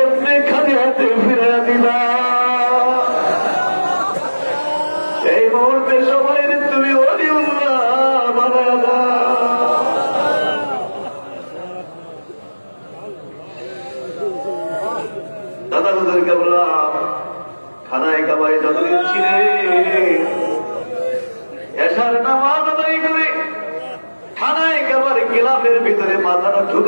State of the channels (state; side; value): inverted; both; correlation -1.00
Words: খালি হাতে ফিরে দিবা? এই মুহূর্তে সবাই তুমি ওলিউল্লাহ বানায়া দাও। দাদা হুজুরকে বললাম খানায় কাবায় যতদিন ছিলে এশার নামাজ আদায় করে খানায় কাবার গিলাফের ভিতরে মাথাটা